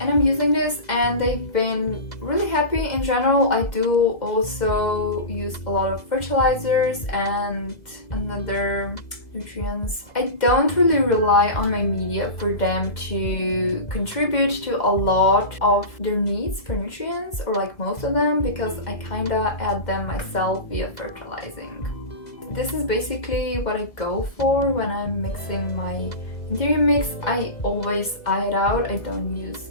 I'm using this and they've been really happy in general. I do also use a lot of fertilizers and another nutrients. I don't really rely on my media for them to contribute to a lot of their needs for nutrients, or like most of them, because I kinda add them myself via fertilizing. This is basically what I go for when I'm mixing my anthurium mix. I always eye it out. I don't use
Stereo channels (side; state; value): right; late; 2.0 ms